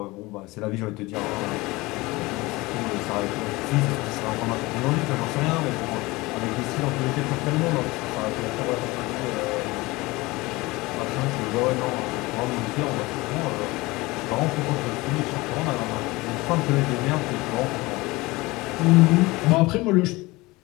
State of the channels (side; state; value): right; quieter; 21.8 dB